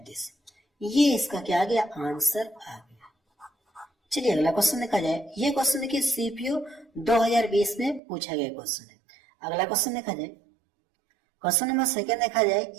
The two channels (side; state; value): left; drops out; at 8.0 s